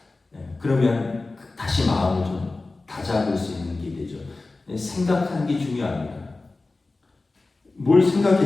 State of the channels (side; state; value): right; quieter; 3.4 dB